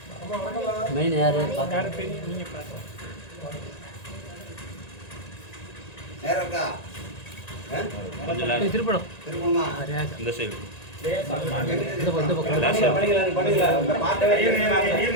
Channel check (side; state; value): right; late; 1.9 ms